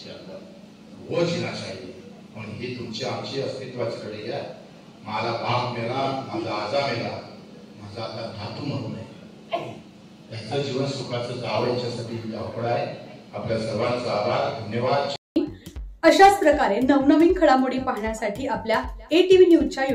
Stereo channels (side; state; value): both; identical; correlation 1.00